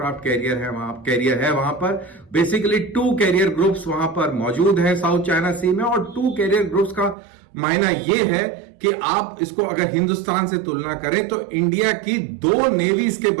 कैरियर है वहां पर। बेसिकली 2 कैरियर ग्रुप्स वहां पर मौजूद हैं साउथ चाइना सी में। और 2 कैरियर ग्रुप्स का मायना यह है कि आप इसको अगर हिंदुस्तान से तुलना करें तो इंडिया की 2 नेवीज के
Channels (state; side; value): drops out; left; at 7.2 s